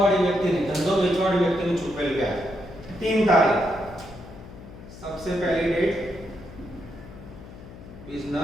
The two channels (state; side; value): noise; left; hum, 16 dB below the sound